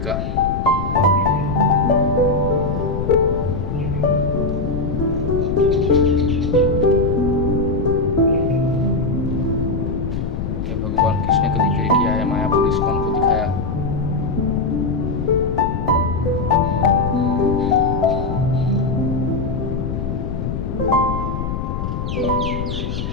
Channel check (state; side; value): noise; left; rumble, 3 dB below the sound